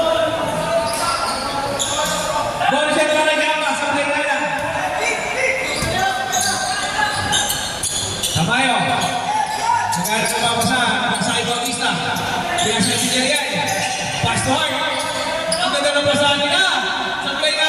Bonus yan para kay Ama sa play na. Tamayo. Nagalit sa babasa kay Bautista. Kaya siya si Jerian. Pass to Hart. Ang ganda ng basahan nila. Sa play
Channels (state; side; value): identical; both; correlation 1.00